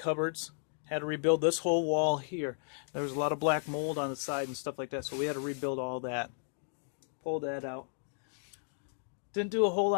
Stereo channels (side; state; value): right; silent; digital silence